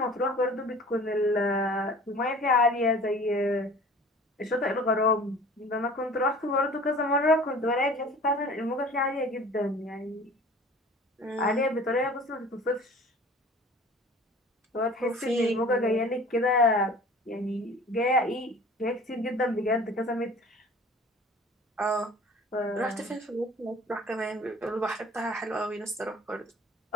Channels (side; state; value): both; normal; correlation 0.45